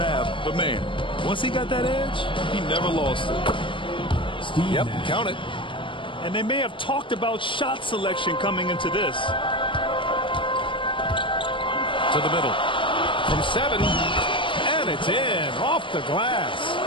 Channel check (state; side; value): late; right; 0.25 ms